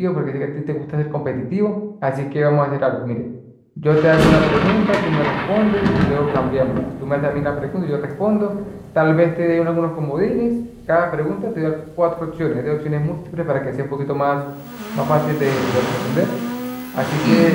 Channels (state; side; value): identical; both; correlation 1.00